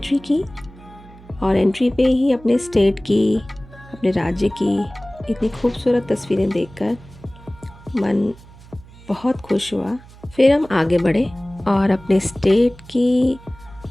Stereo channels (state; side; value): noise; right; hum, 21 dB below the sound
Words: की और एंट्री पे ही अपने स्टेट की, अपने राज्य की इतनी खूबसूरत तस्वीरें देखकर मन बहुत खुश हुआ। फिर हम आगे बढ़े और अपने स्टेट की